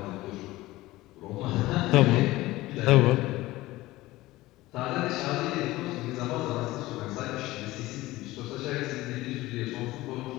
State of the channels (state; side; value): quieter; right; 18.2 dB